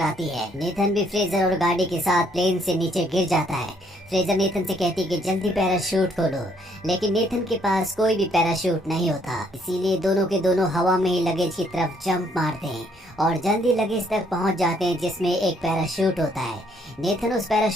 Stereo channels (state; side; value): normal; both; correlation 0.68